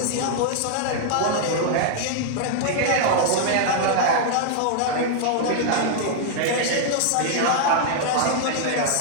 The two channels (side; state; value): both; different; correlation -0.01